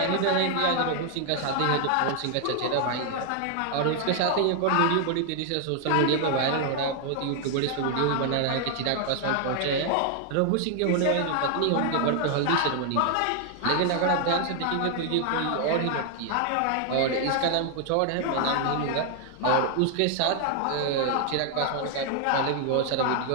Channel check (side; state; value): both; different; correlation 0.00